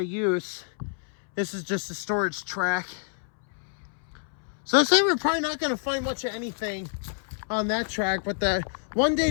use. This is just a storage track. So I say we're probably not going to find much of anything on that track, but the one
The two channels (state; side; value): silent; right; 60 dB below the other